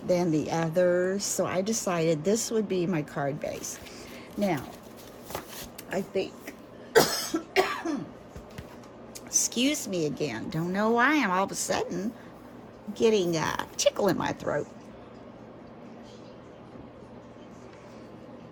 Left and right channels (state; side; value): identical; both; correlation 1.00